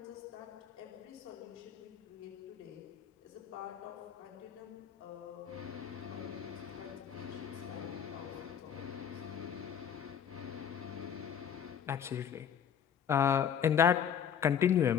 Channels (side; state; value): right; quieter; 8.4 dB